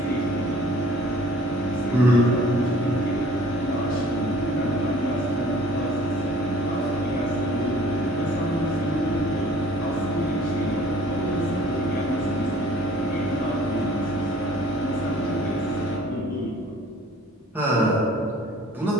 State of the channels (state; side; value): normal; both; correlation 0.52